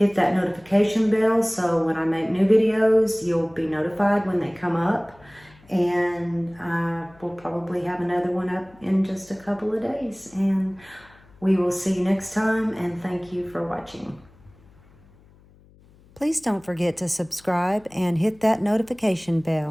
that notification bell so when I make new videos, you'll be notified when they come up. And we'll probably have another one up in just a couple of days. And we will see you next time, and thank you for watching. Please don't forget to subscribe and hit that notification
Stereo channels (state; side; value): noise; left; hum, 27 dB below the sound